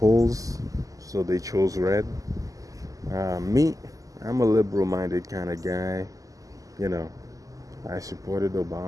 so they chose red. Me, I'm a liberal minded kind of guy. You know, I supported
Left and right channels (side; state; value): left; late; 0.17 ms